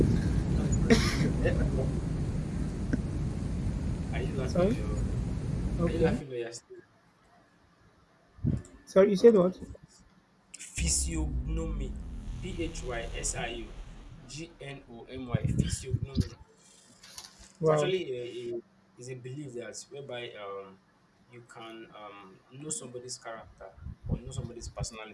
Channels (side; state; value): both; identical; correlation 1.00